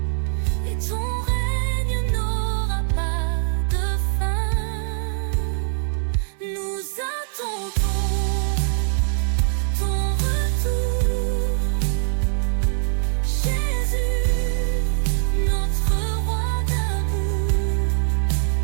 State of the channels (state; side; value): silent; left; digital silence